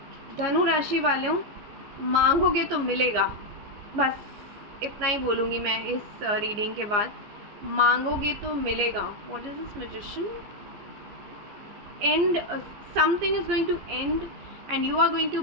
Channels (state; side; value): late; left; 14 ms